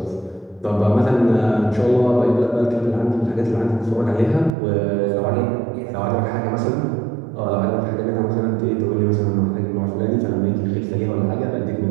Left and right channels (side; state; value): left; drops out; at 4.5 s